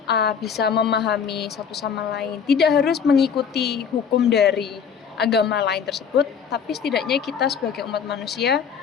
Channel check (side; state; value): right; quieter; 7.0 dB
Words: bisa memahami satu sama lain. Tidak harus mengikuti hukum dari agama lain tersebut, tapi setidaknya kita sebagai umat manusia